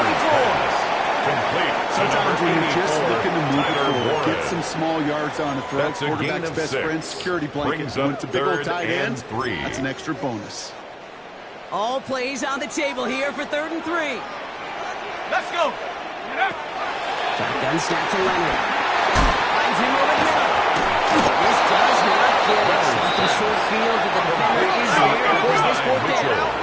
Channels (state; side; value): identical; both; correlation 1.00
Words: 44. Complete. Sometimes when you're just looking to move it forward, Warren. get some small yards on a throw. That's a gain Quarterback's of best 6. friend, security blanket. Brings When up it's a big old third tight and end, 3. that's an extra bonus. All plays on the table here for 3rd and 3. Let's go! Shotgun snap to Leonard. Finds him over the middle. This does not get it. Off in short field, but the defender is there to force this fourth down.